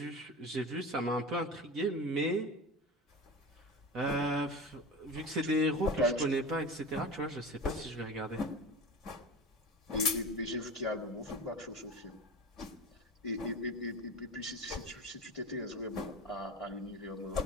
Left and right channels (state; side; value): normal; both; correlation 0.31